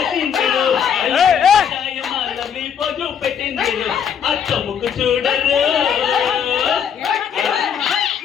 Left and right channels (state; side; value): quieter; right; 7.9 dB